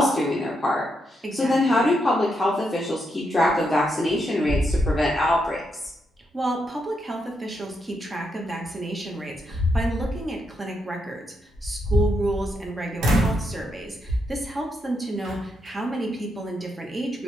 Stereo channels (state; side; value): normal; both; correlation 0.81